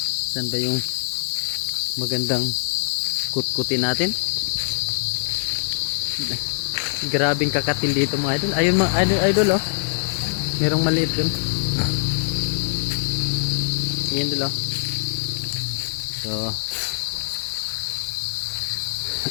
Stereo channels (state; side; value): silent; right; digital silence